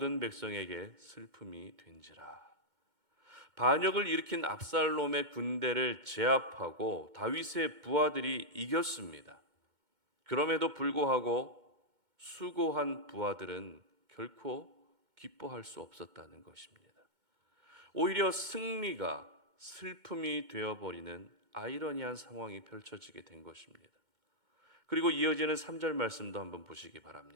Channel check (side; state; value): left; late; 2.2 ms